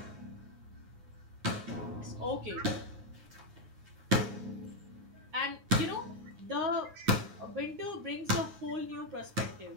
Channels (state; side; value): late; left; 9.6 ms